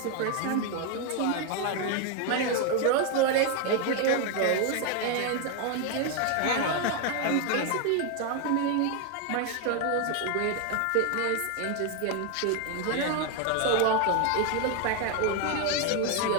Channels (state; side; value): different; both; correlation 0.01